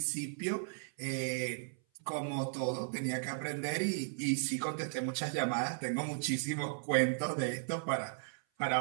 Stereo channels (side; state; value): left; silent; 54 dB below the other